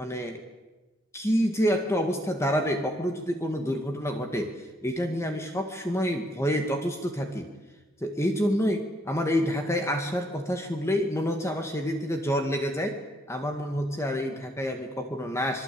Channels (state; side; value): normal; both; correlation 0.71